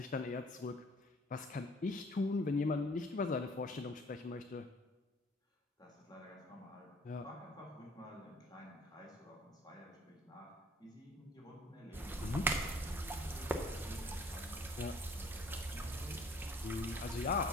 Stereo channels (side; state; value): both; normal; correlation 0.56